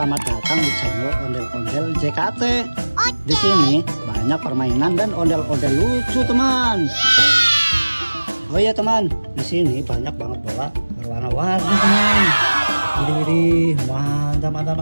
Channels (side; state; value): both; inverted; correlation -1.00